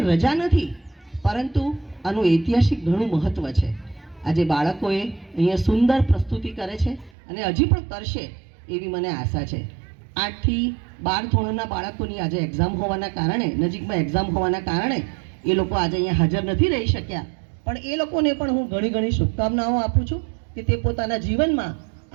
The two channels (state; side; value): drops out; left; at 7.1 s